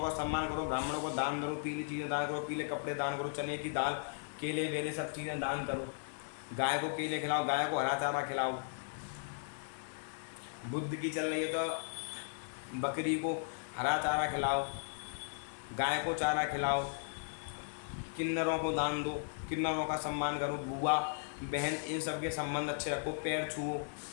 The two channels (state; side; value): silent; right; digital silence